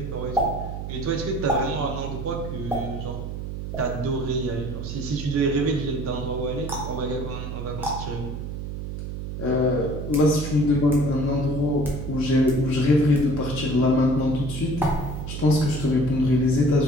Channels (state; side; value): noise; right; hum, 6 dB below the sound